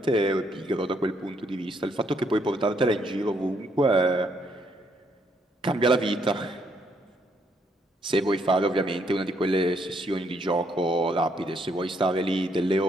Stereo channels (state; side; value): normal; both; correlation 0.72